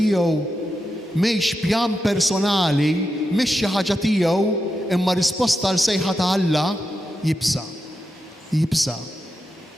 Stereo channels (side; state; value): both; normal; correlation 0.87